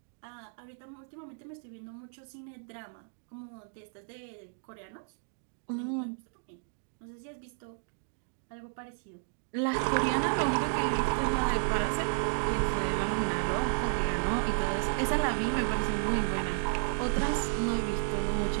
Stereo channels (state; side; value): silent; left; digital silence